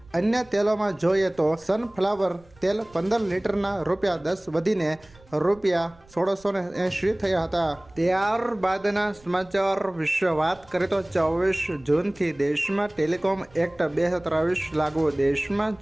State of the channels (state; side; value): noise; right; rumble, 27 dB below the sound